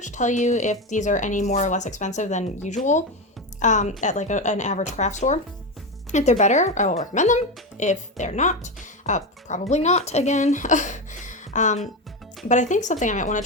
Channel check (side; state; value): both; normal; correlation 0.16